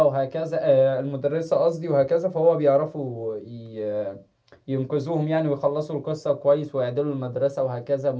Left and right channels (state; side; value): identical; both; correlation 1.00